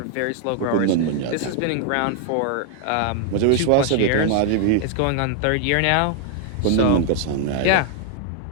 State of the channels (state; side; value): different; both; correlation 0.00